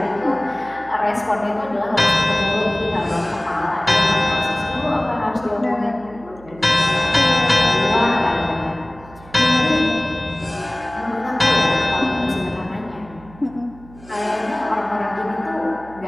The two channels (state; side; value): noise; right; hum, 22 dB below the sound